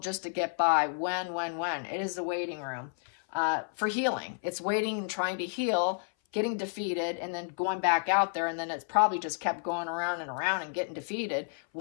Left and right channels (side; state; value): right; silent; 57 dB below the other